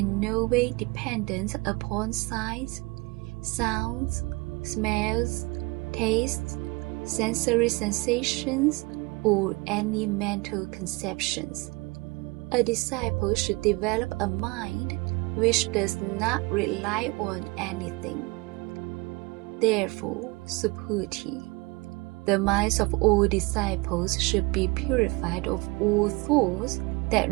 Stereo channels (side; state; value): left; quieter; 25.7 dB